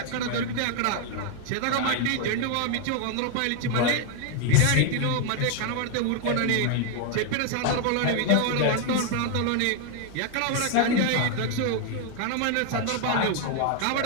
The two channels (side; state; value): both; different; correlation 0.00